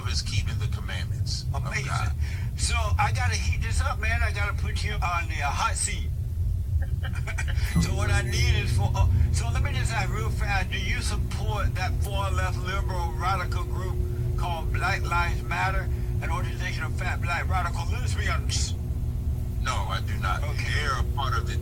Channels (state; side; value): identical; both; correlation 1.00